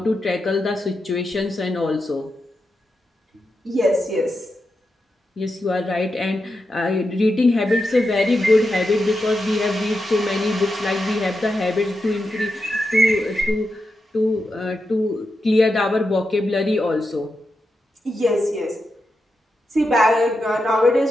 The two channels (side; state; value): both; normal; correlation 0.87